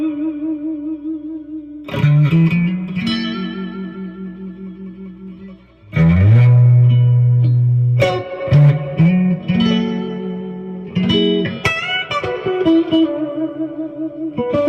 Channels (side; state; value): both; identical; correlation 1.00